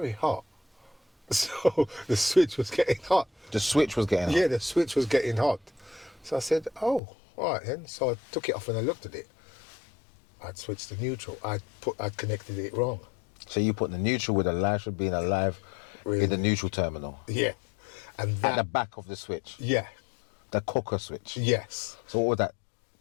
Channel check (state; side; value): drops out; right; at 7.0 s